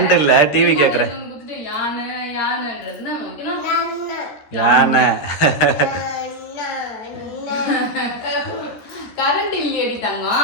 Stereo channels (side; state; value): right; late; 13 ms